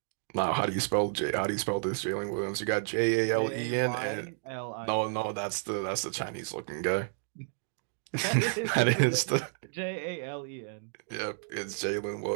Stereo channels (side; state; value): left; silent; digital silence